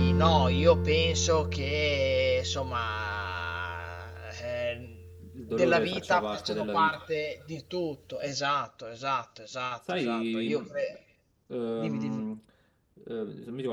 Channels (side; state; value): both; identical; correlation 1.00